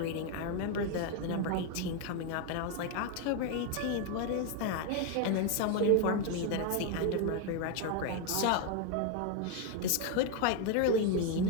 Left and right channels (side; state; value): both; different; correlation 0.01